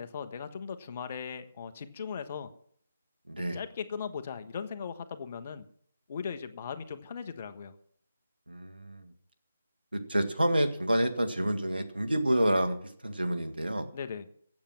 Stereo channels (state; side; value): inverted; both; correlation -0.91